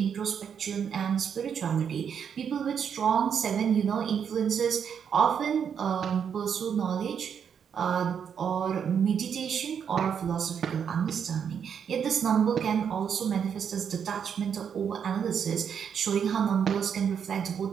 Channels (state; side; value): quieter; left; 7.6 dB